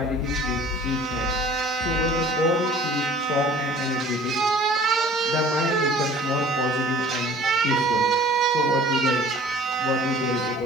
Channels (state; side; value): normal; both; correlation 0.49